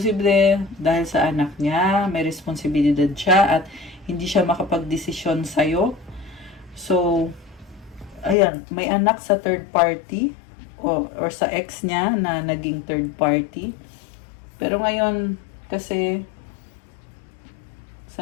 dahil sa anak niya, may responsibilidad siya at hindi siya makapag-desisyon sa'yo. So, ayan, may anak sa third party. Or sa ex niya na naging third party. Pero ngayon, kasi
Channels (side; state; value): right; drops out; at 8.3 s